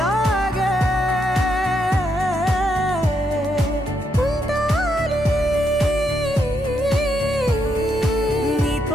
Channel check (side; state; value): both; normal; correlation 0.78